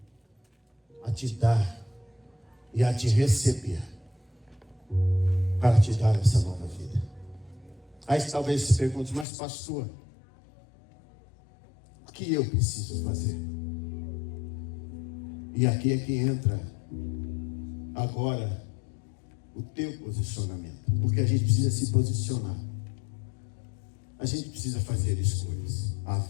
a te dar e a te receber, para te dar essa nova vida. Aí talvez se pergunte: mas pastor, o que eu preciso fazer? E aqui é que entra agora o teu posicionamento, porque a gente precisa se posicionar, a gente precisa fazer escolhas. A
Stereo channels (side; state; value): right; drops out; at 9.2 s